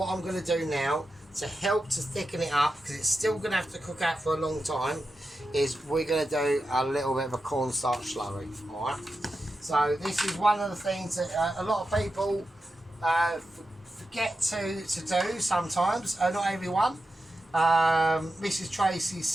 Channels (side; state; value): both; normal; correlation 0.90